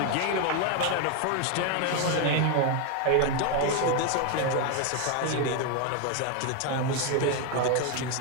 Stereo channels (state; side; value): different; both; correlation 0.01